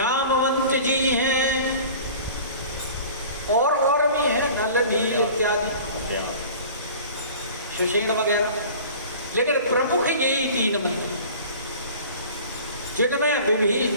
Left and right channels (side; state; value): both; inverted; correlation -0.43